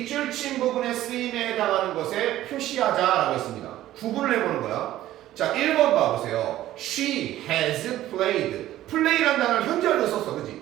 친 부분의 쓰임에 해당하는 것에 표시하자라고 했습니다. 구분을 해보는 거야. 자, 1번 봐보세요. She has played. play라는 단어를 현재완료 썼어, 그지?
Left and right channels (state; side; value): quieter; left; 14.0 dB